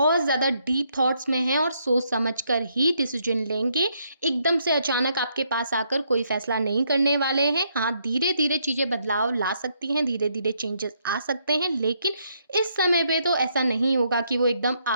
ज़्यादा डीप थॉट्स में हैं, और सोच समझ कर ही डिसीजन लेंगे। एकदम से अचानक आपके पास आकर कोई फैसला नहीं करने वाले हैं। हाँ, धीरे-धीरे चीज़ें बदलाव ला सकती हैं, धीरे-धीरे चेंजेस आ सकते हैं, लेकिन इस समय पे तो ऐसा नहीं होगा कि वो एकदम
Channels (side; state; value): both; inverted; correlation -0.74